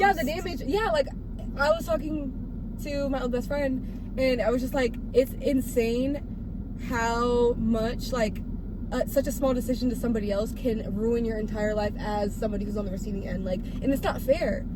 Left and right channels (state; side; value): identical; both; correlation 1.00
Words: the damage. Yeah, like I was talking to my old best friend, and I was just like, it's insane how much like such a small decision to somebody else can ruin your entire life as somebody who's on the receiving end. Like, and it's not fair,